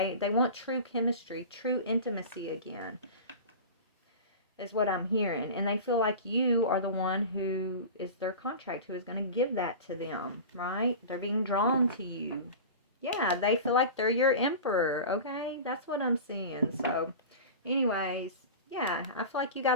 want true chemistry, true intimacy again. is what I'm hearing. And they feel like you are the one who is their contract, who is going to give that to them, right? They're being drawn to you. Yeah, they feel like they're your emperor, okay? That's what I'm seeing. So, anyways, yeah, I feel like you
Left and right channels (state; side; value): inverted; both; correlation -0.32